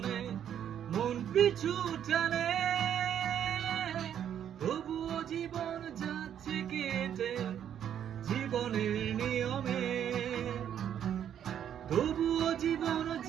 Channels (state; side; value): quieter; left; 9.6 dB